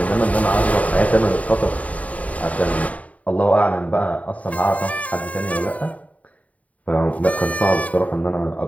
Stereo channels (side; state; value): right; late; 0.069 ms